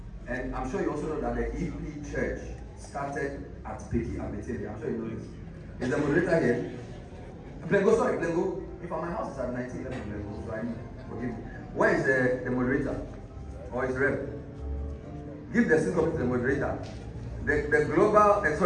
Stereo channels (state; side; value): identical; both; correlation 1.00